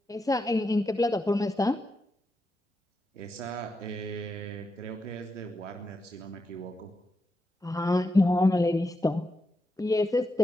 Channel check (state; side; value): normal; both; correlation 0.86